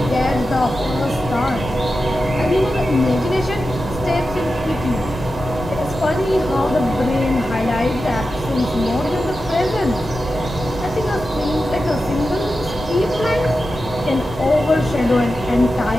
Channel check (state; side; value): normal; both; correlation 0.91